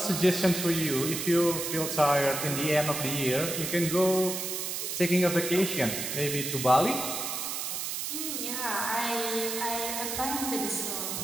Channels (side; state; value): right; noise; hiss, 3 dB below the sound